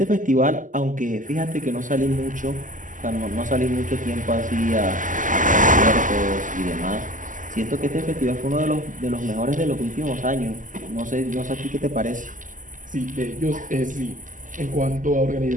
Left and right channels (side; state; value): left; late; 0.38 ms